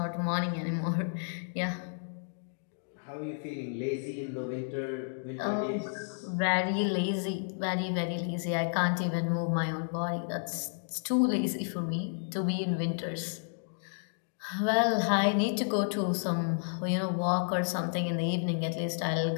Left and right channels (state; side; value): silent; right; digital silence